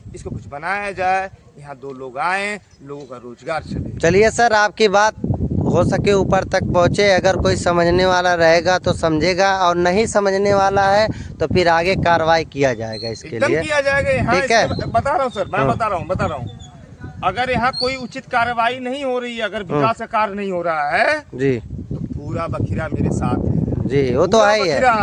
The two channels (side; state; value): both; identical; correlation 1.00